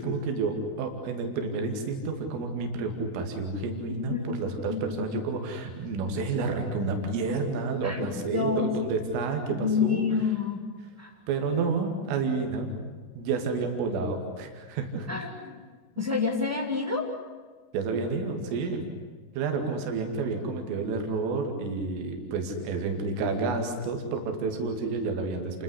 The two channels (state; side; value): late; left; 16 ms